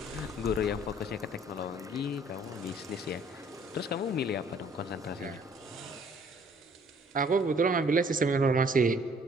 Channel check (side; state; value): both; normal; correlation 0.59